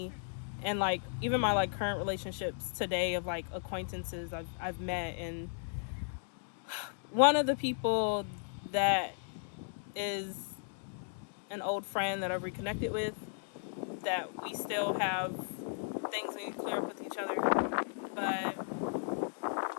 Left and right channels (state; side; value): silent; right; digital silence